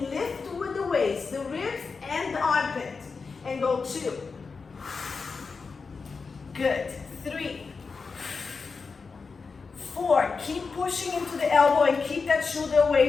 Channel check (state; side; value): quieter; right; 4.8 dB